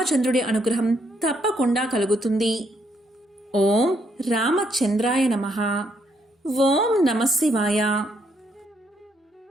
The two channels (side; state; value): both; normal; correlation 0.74